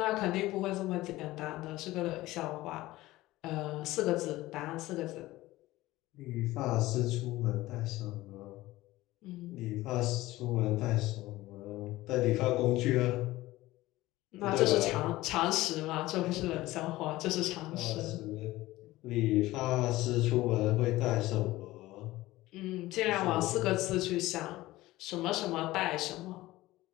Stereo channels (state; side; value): quieter; right; 17.7 dB